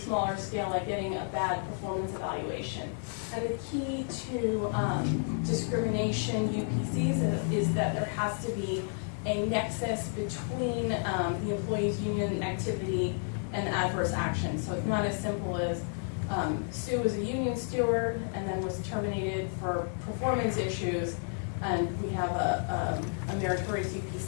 scale, like getting a bad performance evaluation. And the key to discrimination UPCs is that there has to be a nexus between the employee's union activity and the adverse action. So it's not as simple as Sue is a union steward and then was terminated for performance issues, and we have a meritorious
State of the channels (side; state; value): right; silent; 57 dB below the other